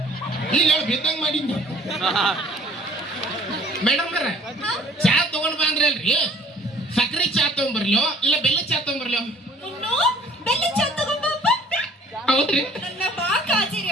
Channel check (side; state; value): both; normal; correlation 0.54